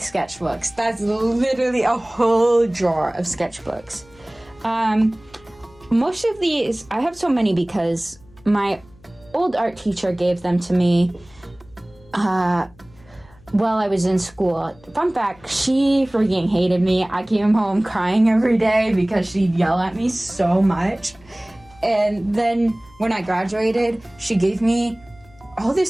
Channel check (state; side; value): noise; left; hum, 27 dB below the sound